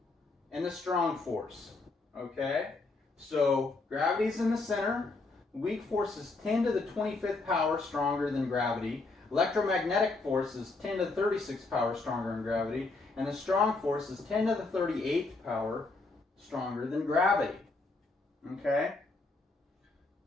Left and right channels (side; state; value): right; quieter; 3.5 dB